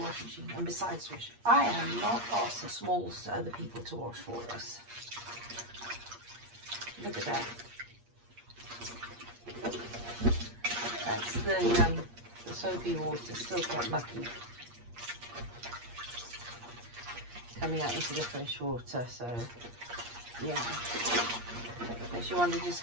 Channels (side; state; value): left; late; 8.5 ms